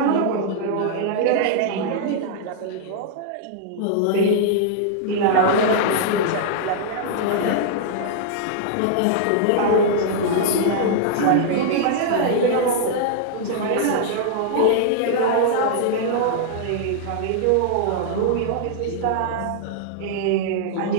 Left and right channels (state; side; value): different; both; correlation -0.01